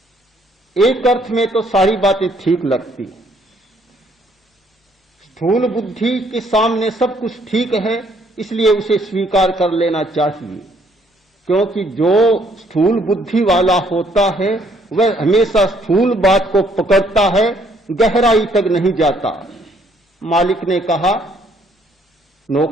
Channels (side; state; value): both; normal; correlation 0.66